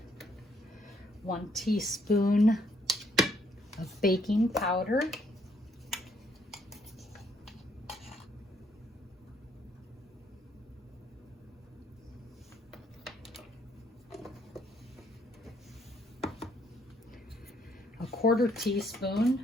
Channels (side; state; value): both; normal; correlation 0.69